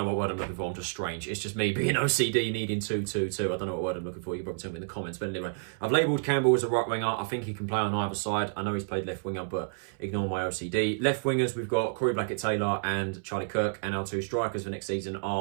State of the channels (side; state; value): left; silent; 58 dB below the other